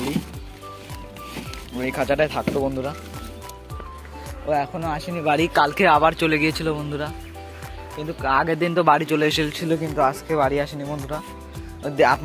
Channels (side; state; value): both; identical; correlation 1.00